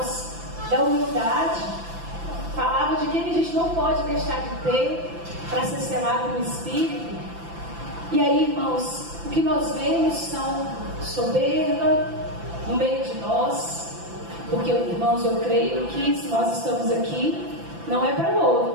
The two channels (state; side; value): late; left; 5.9 ms